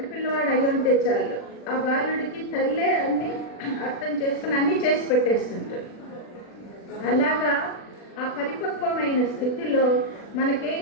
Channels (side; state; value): right; late; 40 ms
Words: పిల్లవాడు అయి ఉంటే చాలు, ఆ బాలుడికి తల్లే అన్ని అర్థం చేసుకుని అన్నీ చేసి పెట్టేస్తుంటారు. అలాగా ఆ పరిపక్వమైన స్థితిలో